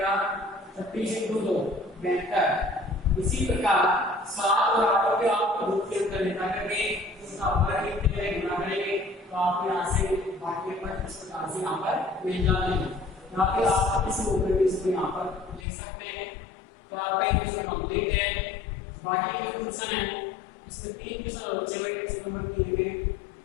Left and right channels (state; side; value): drops out; right; at 15.7 s